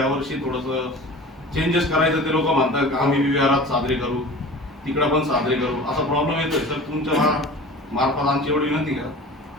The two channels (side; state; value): both; normal; correlation 0.38